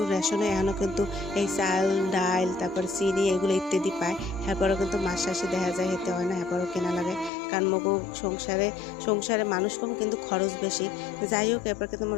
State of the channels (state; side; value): drops out; right; at 7.3 s